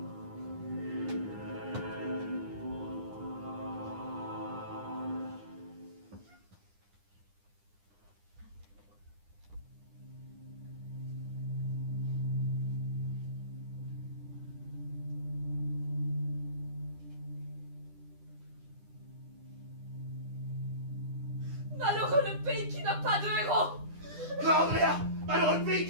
Malheureux le pays qui n'a pas de héros! Non, Andrea! Malheureux pays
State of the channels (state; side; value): late; left; 9.9 ms